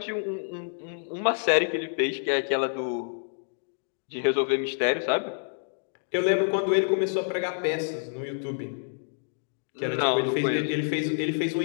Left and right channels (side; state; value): right; silent; digital silence